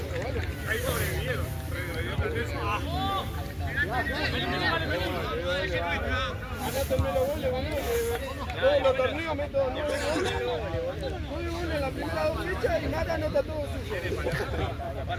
Todos los torneos meto 9 goles. 9 goles en la primera 2 fechas y nada anota todo suyo.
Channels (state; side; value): identical; both; correlation 1.00